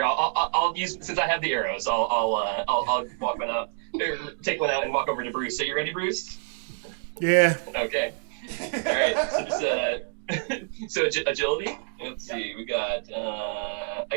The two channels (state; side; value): silent; left; 60 dB below the other